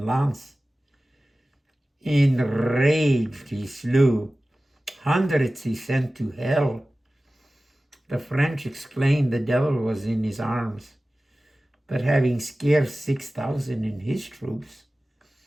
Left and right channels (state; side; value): normal; both; correlation 0.96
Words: lance. Enraged he slew, hundreds he sent to hell. The French exclaimed the devil was in his arms, but having scarce 6,000 in his troops,